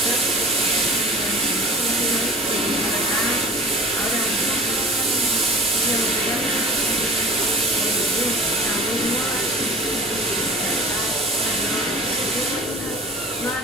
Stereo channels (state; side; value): normal; both; correlation 0.41